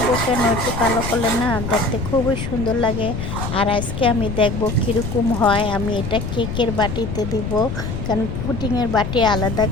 কেন, একটু কালো করলে না দেখতে খুবই সুন্দর লাগে। আর আজকে আমি দেখব কীরকম হয়। আমি এটা কেকের বাটিতে দিব, কারণ পুডিংয়ের বাটি আলাদা,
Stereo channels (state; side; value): noise; left; rumble, 5 dB below the sound